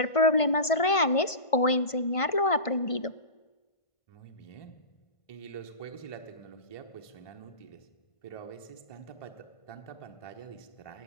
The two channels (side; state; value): right; late; 1.5 ms